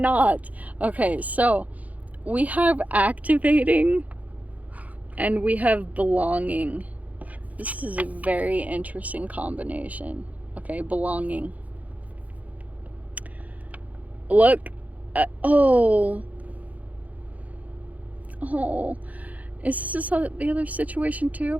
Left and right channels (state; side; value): late; left; 0.074 ms